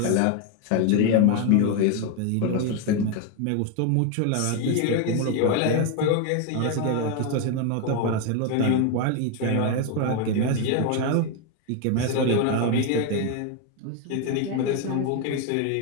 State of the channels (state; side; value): different; both; correlation 0.01